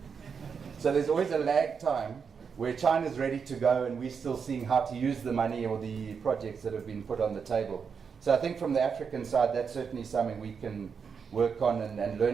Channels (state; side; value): quieter; left; 6.2 dB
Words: So there's always a lag time where China's ready to go and we're still seeing how to use the money or the projects that have been put on the table. So I think from the African side, that's certainly something we can work on and